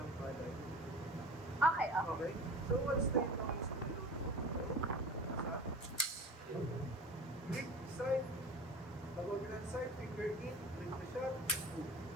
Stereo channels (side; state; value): both; normal; correlation 0.37